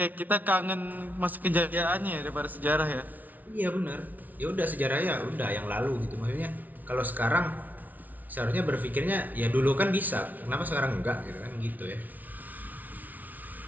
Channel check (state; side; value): late; left; 0.078 ms